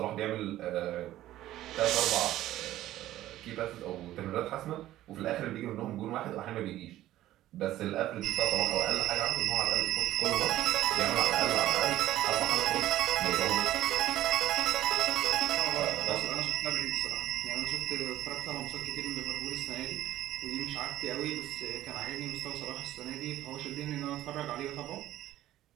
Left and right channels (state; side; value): quieter; left; 14.2 dB